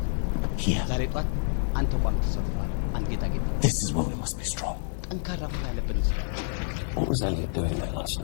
ወሬ። ዛሬ ጧት አንተ ቋም ተሰርቷል። አንድ ጌጣጌጥ ተቋም ጠንካራ መሆን አለብን። እዚህ ላይ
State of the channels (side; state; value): right; silent; digital silence